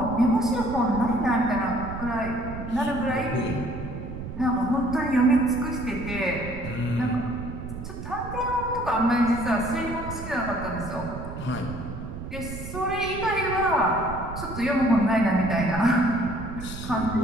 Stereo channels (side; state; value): right; noise; rumble, 9 dB below the sound